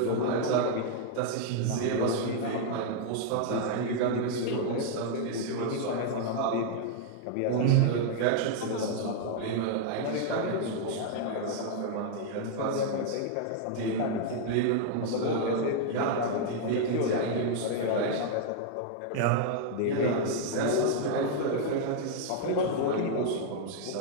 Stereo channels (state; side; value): different; both; correlation -0.01